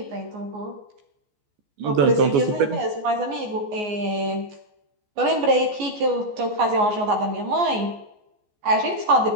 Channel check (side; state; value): left; late; 14 ms